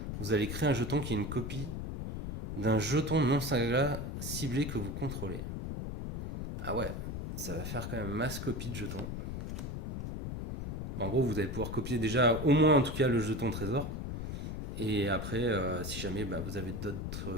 vous allez créer un jeton qui est une copie d'un jeton non saga ciblé que vous contrôlez. Ah ouais, ça va faire quand même masse copie de jetons. En gros, vous allez pouvoir copier déjà au moins en tout cas le jeton trésor. Et après, si jamais vous avez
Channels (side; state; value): left; noise; rumble, 5 dB below the sound